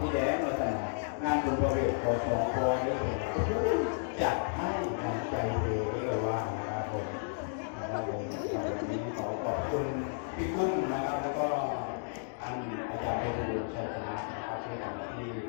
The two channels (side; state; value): right; silent; digital silence